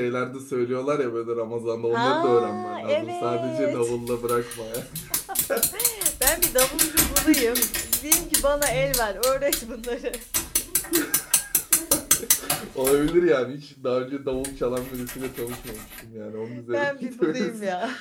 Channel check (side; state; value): both; identical; correlation 1.00